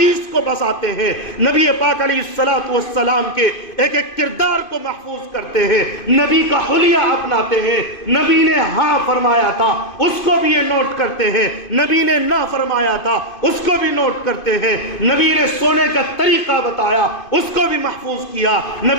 کو بساتے ہیں، نبی پاک علیہ السلام کے ایک ایک کردار کو محفوظ کرتے ہیں، نبی کا حلیہ اپناتے ہیں، نبی نے ہاں فرمایا تھا اس کو بھی یہ نوٹ کرتے ہیں، نبی نے نہ فرمایا تھا اس کو بھی نوٹ کرتے ہیں، نبی نے سونے کا طریقہ بتایا اس کو بھی محفوظ کیا،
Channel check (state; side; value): late; right; 2.5 ms